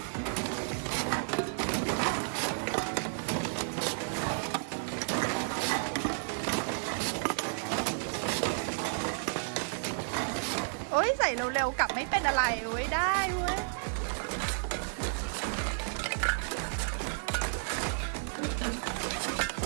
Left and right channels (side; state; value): left; silent; digital silence